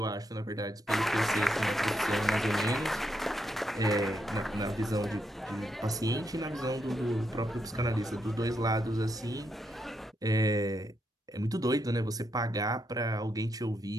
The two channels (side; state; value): both; normal; correlation 0.81